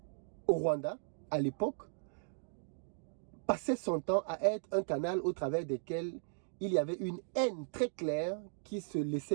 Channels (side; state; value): left; silent; digital silence